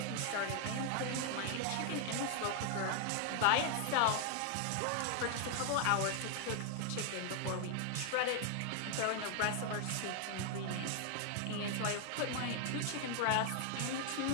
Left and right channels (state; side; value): different; both; correlation 0.00